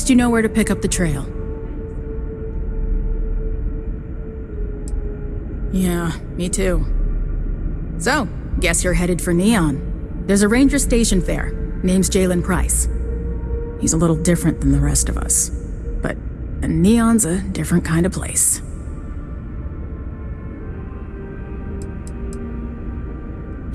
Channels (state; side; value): identical; both; correlation 1.00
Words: you know where to pick up the trail. Yeah, me too. So, guess you're headed for Neon. There's a ranger stationed there. Name's Jalen Price. He's a little different than the rest of us. But Neon's a different kind of place.